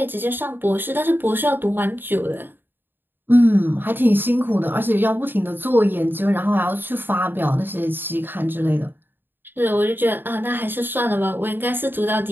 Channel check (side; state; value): left; late; 0.096 ms